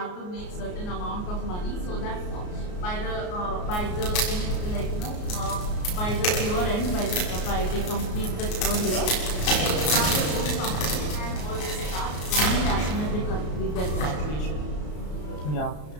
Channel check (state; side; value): late; right; 33 ms